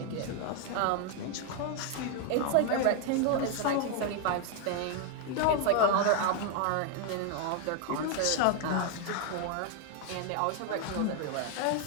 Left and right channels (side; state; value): both; different; correlation 0.01